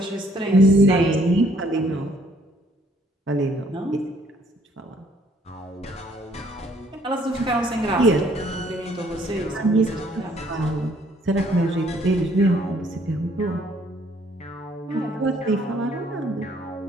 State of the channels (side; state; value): both; normal; correlation 0.63